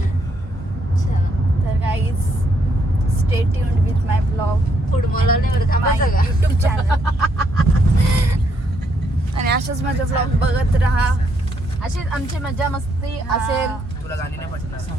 तर guys stay tuned with my blog, football नाही बरं माय थांबायचं का युट्यूब चॅनल. आणि अशाच माझे ब्लॉग बघत राहा. अशीच आमची मजा मस्ती असेल. तुला गाणी नाही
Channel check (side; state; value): both; normal; correlation 0.74